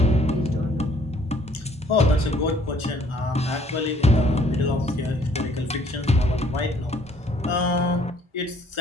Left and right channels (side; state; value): both; normal; correlation 0.61